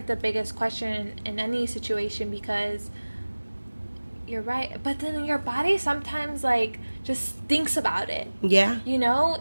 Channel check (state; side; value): inverted; both; correlation -1.00